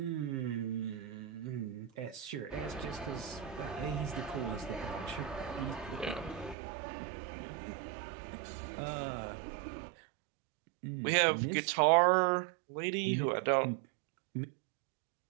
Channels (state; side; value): drops out; left; at 6.6 s